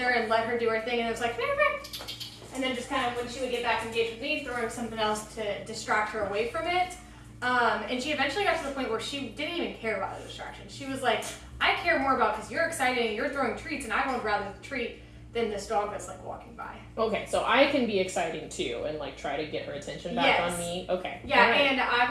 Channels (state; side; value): identical; both; correlation 1.00